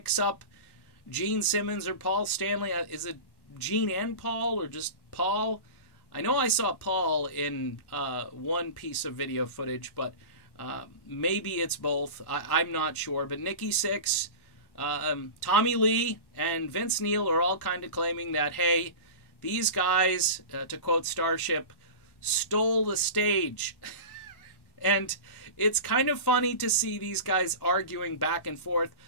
up Gene Simmons or Paul Stanley. Is it Gene and Paul or just Paul? I know I saw Paul in one piece of video footage, but maybe it's both. I'm not sure. But Nikki Sixx, Tommy Lee, and Vince Neil are all kind of claiming that, hey, these guys, to quote Starship, stole the stage. And it's kind of funny to see these guys arguing back and forth.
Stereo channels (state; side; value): late; right; 1.1 ms